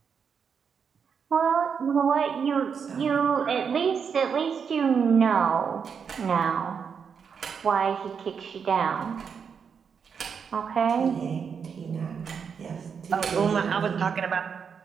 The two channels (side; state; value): left; quieter; 6.6 dB